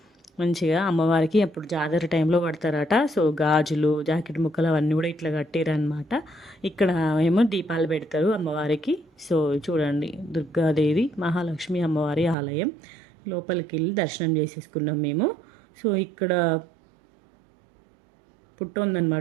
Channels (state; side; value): drops out; left; at 12.4 s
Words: మంచిగా. అమ్మవారికి అప్పుడు జాతర టైంలో కడతారట. సో గాజులు జాకెట్ ముక్కలు అవన్నీ కూడా ఇట్లా కట్టిరనమాట. ఇక్కడ ఏమో దీపాలు పెడతారు అమ్మవారికి. సో చూడండి దుర్గాదేవి మహాలక్ష్మి అమ్మవారి ఆలయం. లోపలికి వెళ్ళి దర్శనం చేసేసుకున్నాం మేము. సో ఇక్కడ పుట్ట